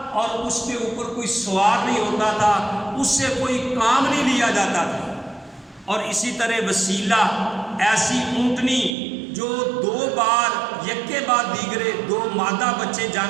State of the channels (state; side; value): drops out; left; at 9.0 s